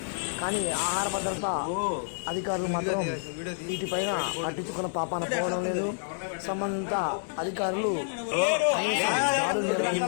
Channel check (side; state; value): right; silent; 59 dB below the other